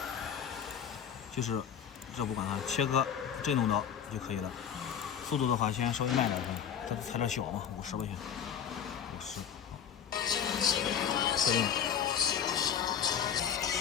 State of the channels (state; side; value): quieter; right; 8.3 dB